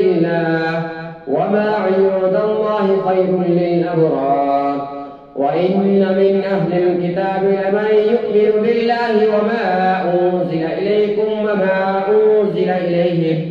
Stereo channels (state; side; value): identical; both; correlation 1.00